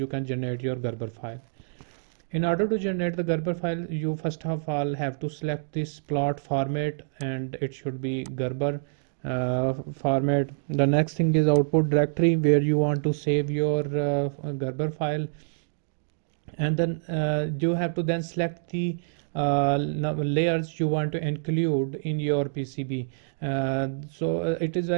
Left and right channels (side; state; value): left; silent; digital silence